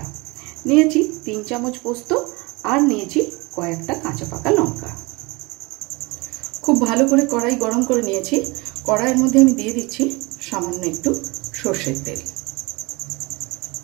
निয়েছি 3 चामच पोस्त और निয়েছি कयेकटा काँचा पाका लंका। खूब भालो करे कड़ाई गरम करे निয়েছি। कड़ाइर मध्य आमी दिए दिচ্ছি सामान्य एकटू सर्षेर तेल।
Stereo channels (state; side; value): quieter; left; 25.4 dB